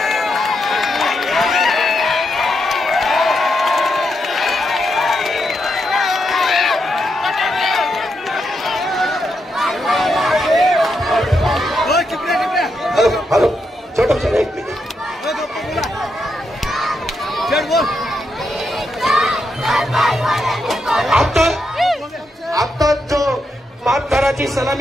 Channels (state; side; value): normal; both; correlation 0.82